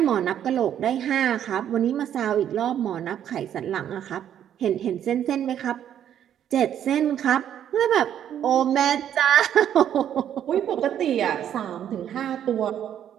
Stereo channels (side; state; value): left; quieter; 10.0 dB